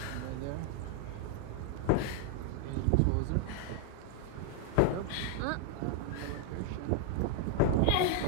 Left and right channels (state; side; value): different; both; correlation 0.00